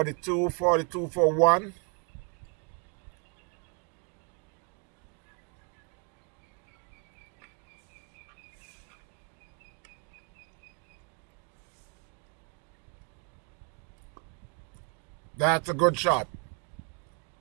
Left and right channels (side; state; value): left; quieter; 36.3 dB